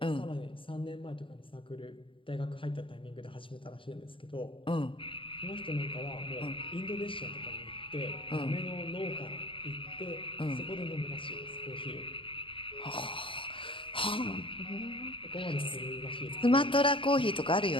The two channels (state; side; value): late; right; 0.25 ms